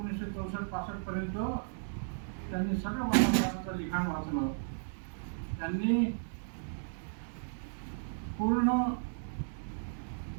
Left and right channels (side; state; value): left; silent; digital silence